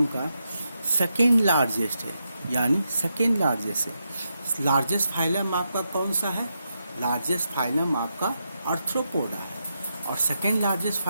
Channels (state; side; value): inverted; both; correlation -0.85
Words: का सेकेंड लार्जेस्ट है, यानी सेकेंड लार्जेस्ट है। लार्जेस्ट फाइलम आपका कौन सा है? लार्जेस्ट फाइलम आपका आर्थ्रोपोडा है। और सेकेंड लार्जेस्ट